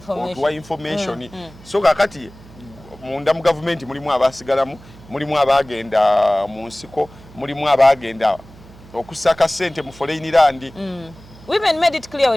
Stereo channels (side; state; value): right; noise; hum, 21 dB below the sound